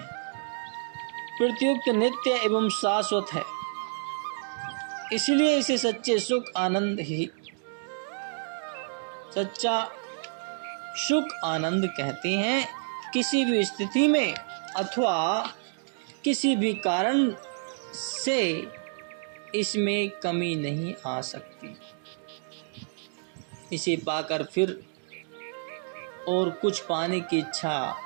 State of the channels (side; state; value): left; silent; digital silence